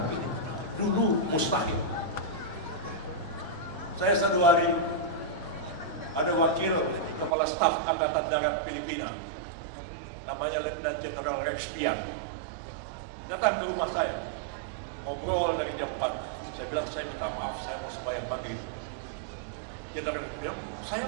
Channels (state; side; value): drops out; left; at 7.4 s